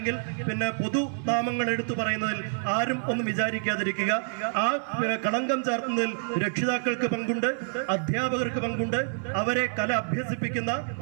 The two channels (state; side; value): silent; left; 57 dB below the other